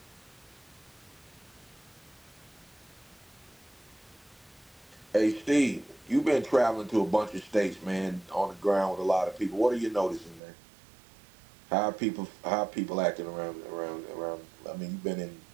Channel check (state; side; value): drops out; left; at 10.4 s